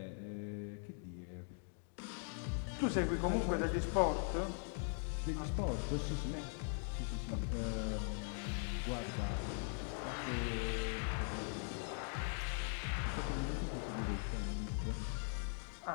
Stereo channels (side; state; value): right; silent; 50 dB below the other